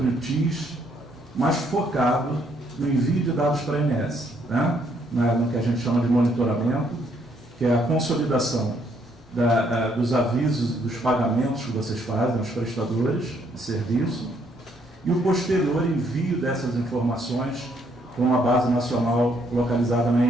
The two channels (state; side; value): normal; both; correlation 0.70